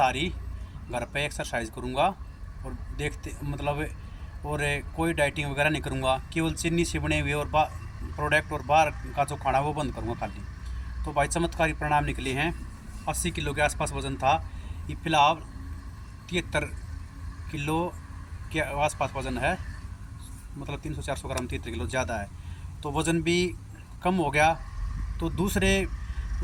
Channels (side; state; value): both; identical; correlation 1.00